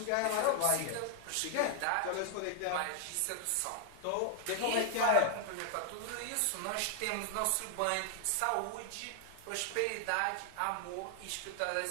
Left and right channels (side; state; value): both; different; correlation 0.00